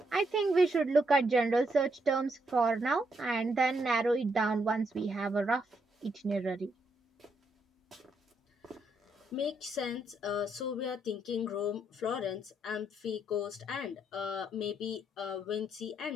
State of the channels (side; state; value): both; normal; correlation 0.77